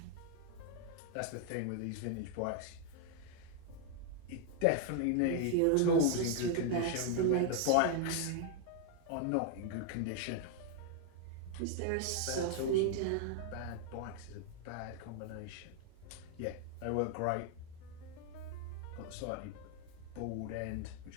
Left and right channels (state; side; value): different; both; correlation 0.00